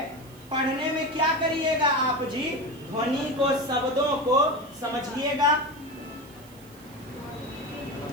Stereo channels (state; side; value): noise; right; hiss, 24 dB below the sound